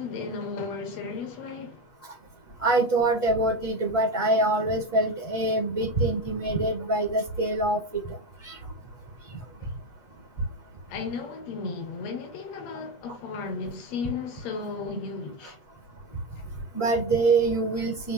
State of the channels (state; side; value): late; right; 8.3 ms